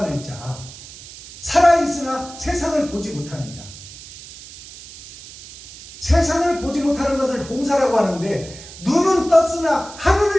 살아있으나 세상을 보지 못하는 자. 세상을 보지 못하는 것을 봉사라고 하는데, 눈은 떴으나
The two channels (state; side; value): noise; right; hiss, 16 dB below the sound